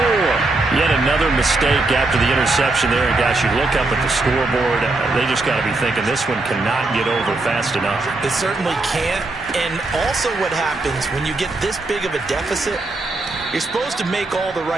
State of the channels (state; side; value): quieter; left; 3.1 dB